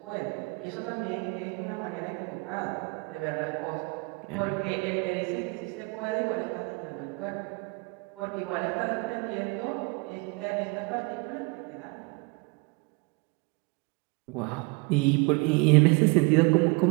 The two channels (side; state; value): left; quieter; 29.1 dB